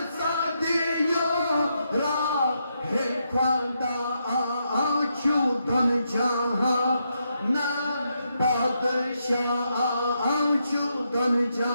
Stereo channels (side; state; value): both; inverted; correlation -0.81